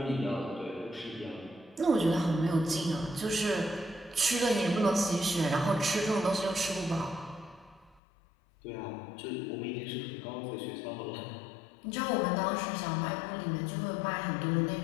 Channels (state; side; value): drops out; right; at 8.0 s